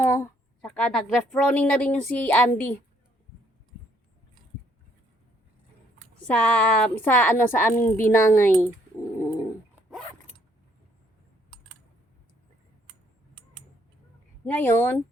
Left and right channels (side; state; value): both; normal; correlation 0.67